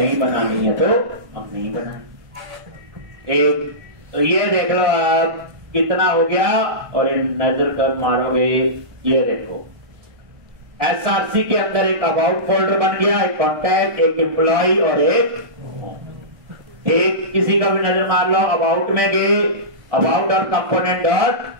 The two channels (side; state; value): left; late; 1.4 ms